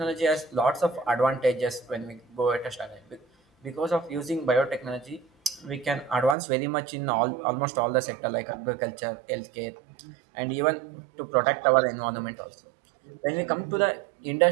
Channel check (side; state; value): left; drops out; at 6.4 s